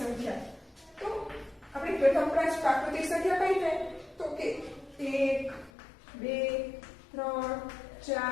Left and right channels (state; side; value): drops out; right; at 5.7 s